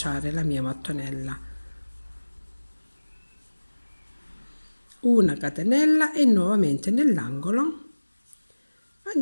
la mia mattonella. Una catenella e nuovamente nell'angolo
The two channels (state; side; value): inverted; both; correlation -1.00